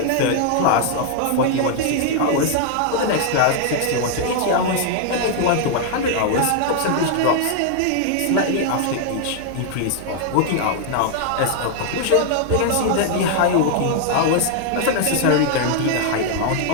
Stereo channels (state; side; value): different; both; correlation 0.00